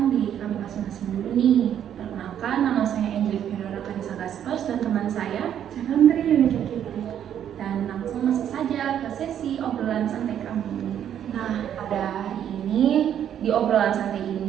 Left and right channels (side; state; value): left; quieter; 9.8 dB